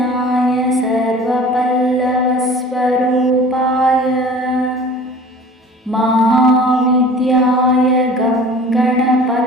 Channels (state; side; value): normal; both; correlation 0.44